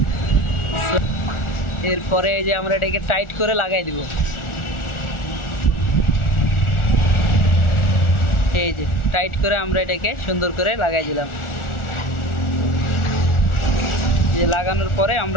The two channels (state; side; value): late; right; 1.4 ms